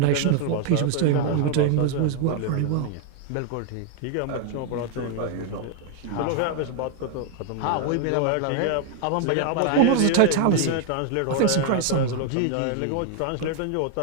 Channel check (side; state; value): both; different; correlation 0.00